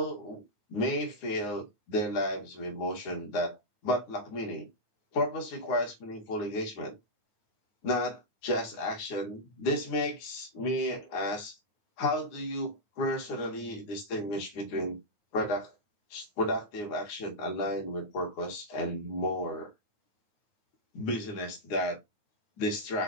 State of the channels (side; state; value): right; late; 9.6 ms